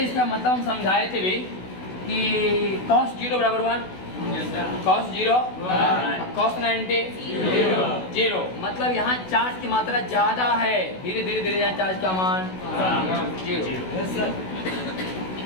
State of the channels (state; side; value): late; right; 16 ms